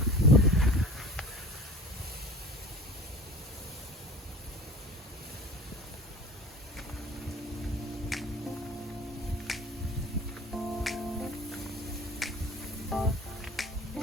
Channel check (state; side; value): normal; both; correlation 0.41